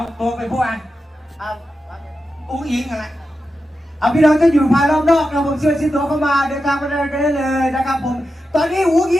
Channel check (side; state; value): both; normal; correlation 0.90